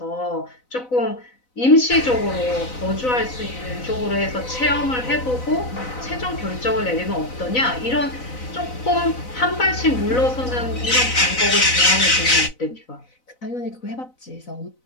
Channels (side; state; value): right; late; 4.0 ms